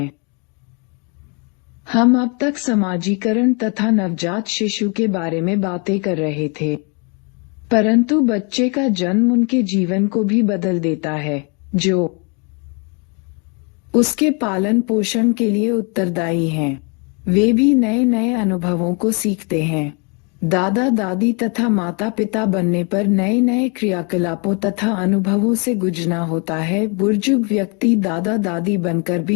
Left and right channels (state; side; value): quieter; right; 34.4 dB